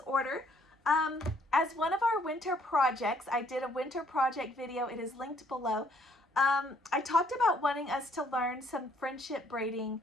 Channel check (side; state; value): both; normal; correlation 0.65